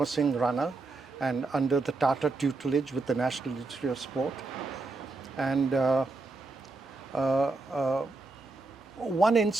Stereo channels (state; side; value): quieter; left; 3.4 dB